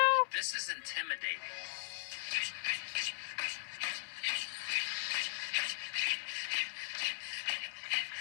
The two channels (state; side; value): silent; right; digital silence